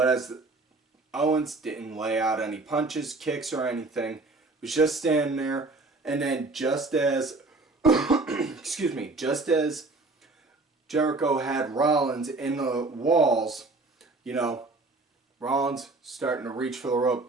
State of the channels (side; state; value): left; quieter; 3.4 dB